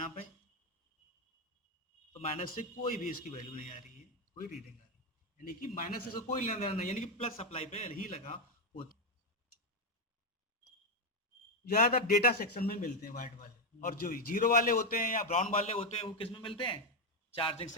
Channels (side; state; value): both; normal; correlation 0.06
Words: पे, तो माइनस से कोई भी इसकी वैल्यू नहीं आ रही है, कोई रीडिंग आ रही है, यानी कि माइनस से कोई लेना देना नहीं, यानी कि प्लस सप्लाई पे ही लगा होता। ज्यादातर डेटा सेक्शन में मिलते हैं व्हाइट वाले, और जो जीरो वाले होते हैं या ब्राउन वाले होते हैं वो किस में मिलते हैं, चार्जिंग